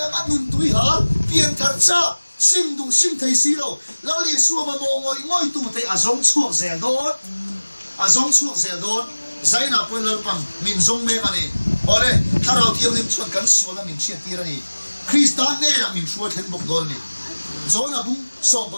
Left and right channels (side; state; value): both; inverted; correlation -1.00